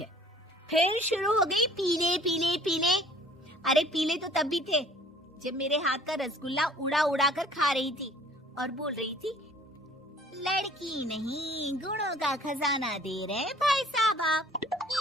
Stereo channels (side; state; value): both; normal; correlation 0.53